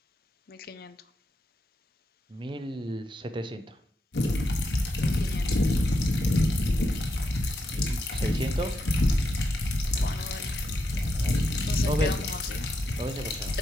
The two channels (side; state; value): both; normal; correlation 0.84